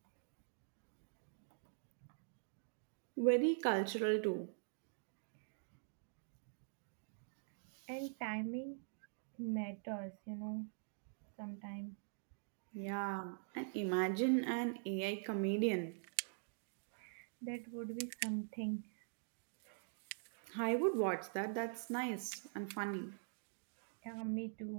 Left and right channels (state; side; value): silent; left; digital silence